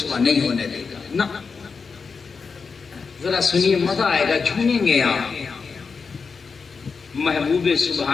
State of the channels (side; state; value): right; quieter; 5.1 dB